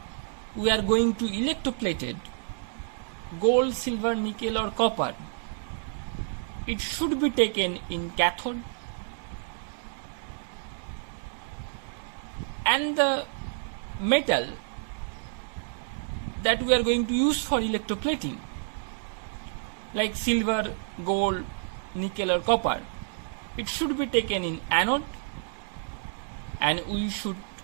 we are going to electroplated gold, silver, nickel or copper. It should be taken in cathode, and the metal that we are going to use for electroplating, like silver, gold, nickel or copper, it should be taken in anode, and we should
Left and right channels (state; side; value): silent; left; digital silence